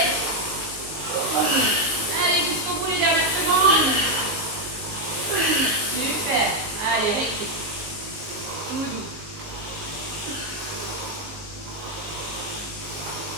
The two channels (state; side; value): late; left; 19 ms